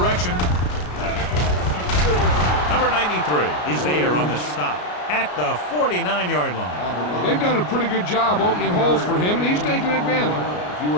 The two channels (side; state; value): right; late; 33 ms